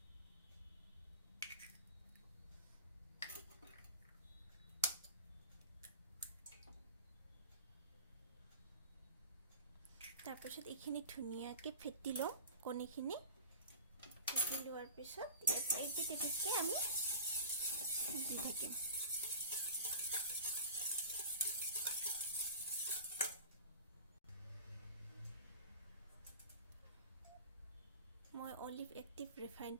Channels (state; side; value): inverted; both; correlation -0.36